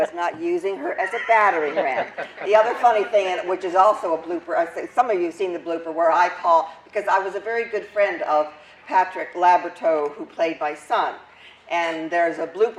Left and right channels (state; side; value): identical; both; correlation 1.00